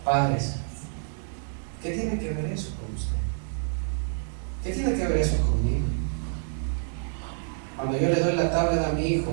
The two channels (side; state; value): left; silent; digital silence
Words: Padres, ¿qué tiene que ver eso con usted? ¿Qué tiene que ver eso conmigo? Cuando yo le doy la tablet a mi